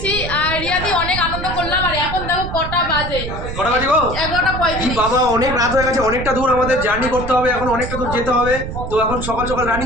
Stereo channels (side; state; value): right; noise; rumble, 7 dB below the sound